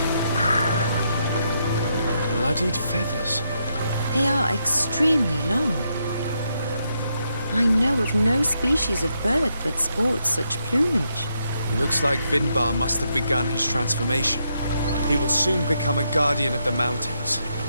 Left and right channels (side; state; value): both; inverted; correlation -0.80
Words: here. Bloodied feathers. They are extremely long. I know of no species of bird that sports such plumage. Looks like Vinbar must have begun his transformation. He will soon become a guardian of the mountains.